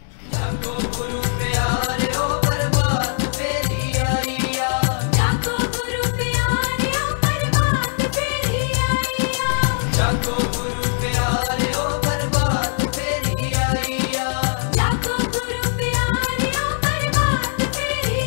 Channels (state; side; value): silent; right; digital silence